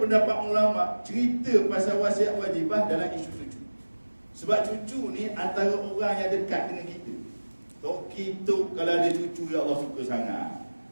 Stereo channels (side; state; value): both; inverted; correlation -1.00